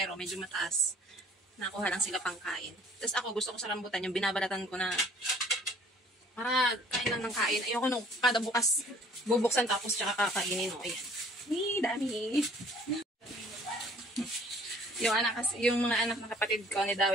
medyo mataas. Nakuha lang sila pang kain. Tapos ako, gusto ko sa rambutan, yung binabalatan ko na para kain lang ng kain. Ayoko nung kada bukas bubuksan tapos tsaka kakainin. O, ayan. Dami. Yung mga anak ng kapatid ko ni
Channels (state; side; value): normal; both; correlation 0.55